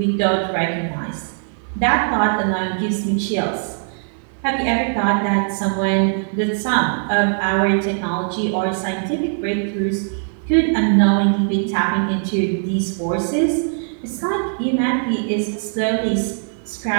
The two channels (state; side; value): silent; left; 58 dB below the other